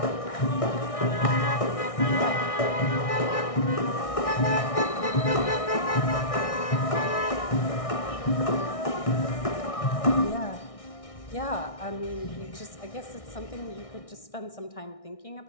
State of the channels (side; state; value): right; late; 1.6 ms